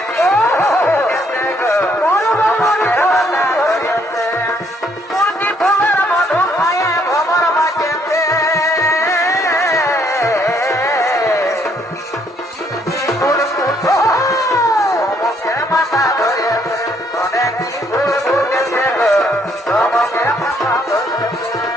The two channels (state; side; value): normal; both; correlation 0.68